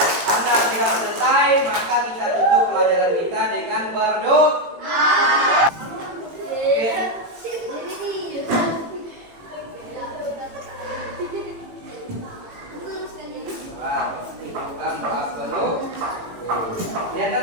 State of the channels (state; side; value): late; left; 18 ms